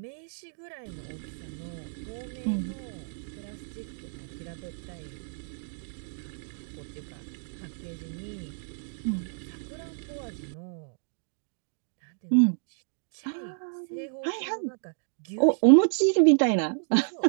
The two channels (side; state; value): left; silent; digital silence